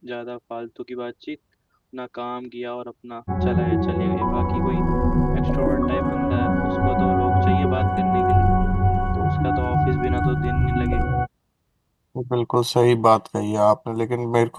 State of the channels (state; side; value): identical; both; correlation 1.00